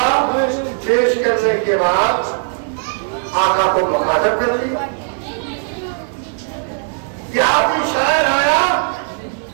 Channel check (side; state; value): left; silent; digital silence